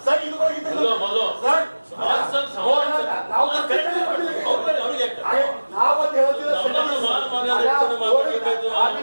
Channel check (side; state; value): both; inverted; correlation -1.00